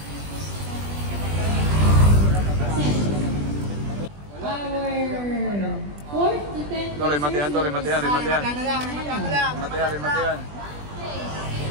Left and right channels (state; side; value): late; left; 20 ms